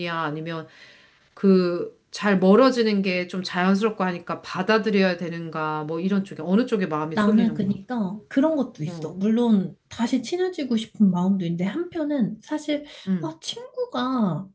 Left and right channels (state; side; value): identical; both; correlation 1.00